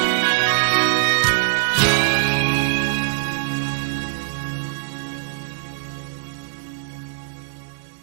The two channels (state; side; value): silent; left; digital silence